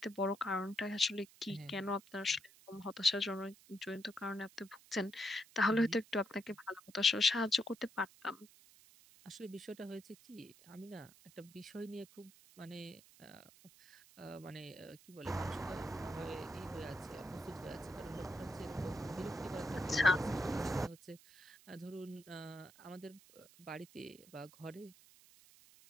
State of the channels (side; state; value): right; noise; hiss, 23 dB below the sound